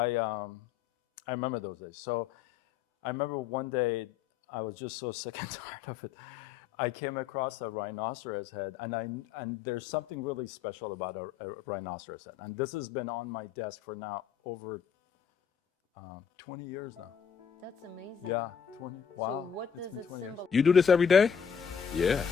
remember those days. So I remember one day I was just so sick and tired of it. I came across a rhinoceros head, and there's something really special about a rhinoceros head. And this has been on my desk for now over 20 years now. That's amazing. Yeah, 20. Wow. So what It's does been it 20 years. symbolize? You do this every day? Yeah.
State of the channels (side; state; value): right; quieter; 7.5 dB